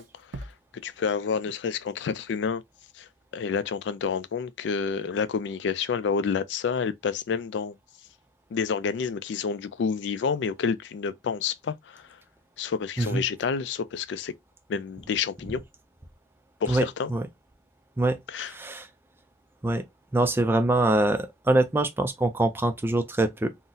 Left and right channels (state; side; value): normal; both; correlation 0.42